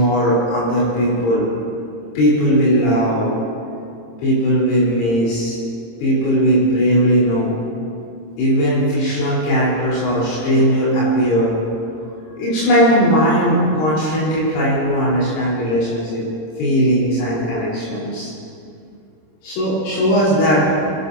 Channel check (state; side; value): late; right; 26 ms